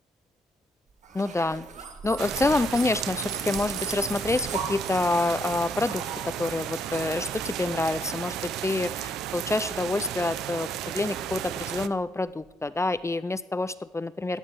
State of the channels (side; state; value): both; normal; correlation 0.73